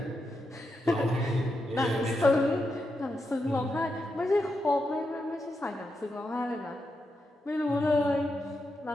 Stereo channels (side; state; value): both; normal; correlation 0.85